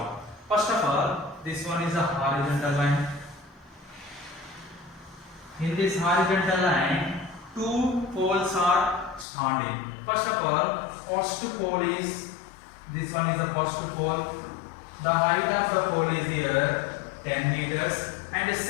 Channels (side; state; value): right; drops out; at 9.2 s